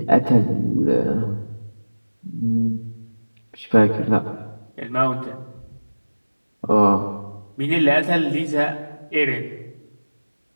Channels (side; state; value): both; inverted; correlation -1.00